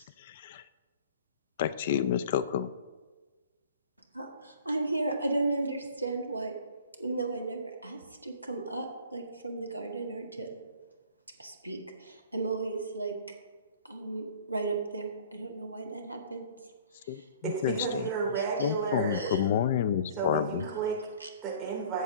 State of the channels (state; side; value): inverted; both; correlation -0.47